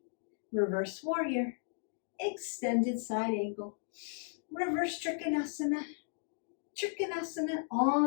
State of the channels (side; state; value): right; silent; digital silence